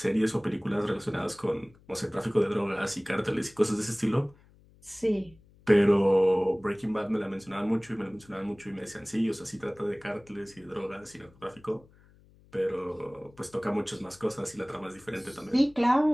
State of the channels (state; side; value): noise; left; hum, 27 dB below the sound